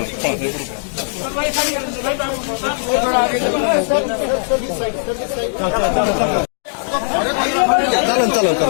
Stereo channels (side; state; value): right; silent; digital silence